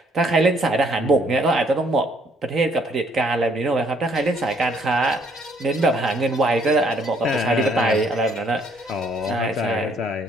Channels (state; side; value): normal; both; correlation 0.65